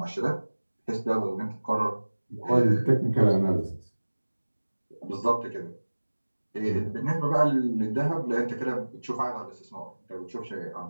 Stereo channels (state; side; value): inverted; both; correlation -1.00